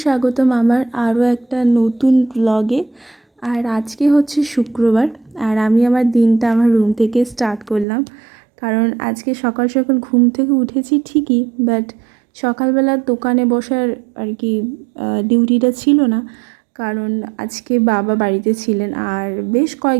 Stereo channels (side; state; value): left; drops out; at 7.9 s